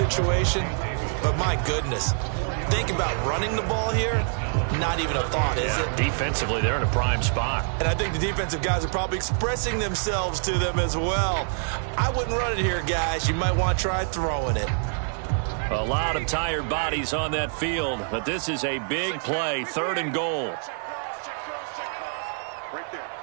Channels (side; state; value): left; silent; 56 dB below the other